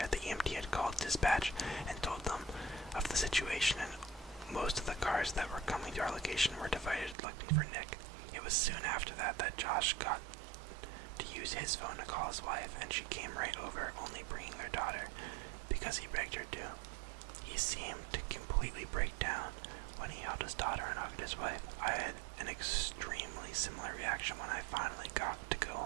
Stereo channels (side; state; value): left; drops out; at 7.2 s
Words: The EMT had called dispatch and told them of the situation, and most of the cars that were coming to our location were divided looking for Nick. It was soon after that Josh got to use his phone to call his wife, and she came right over, only bringing their daughter, because he begged her to. He seemed to completely break down when he held his daughter and hugged his wife. I had an extremely similar reaction when I finally got to go